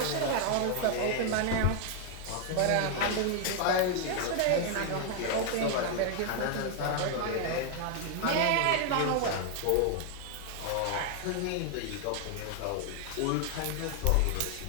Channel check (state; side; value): different; both; correlation 0.00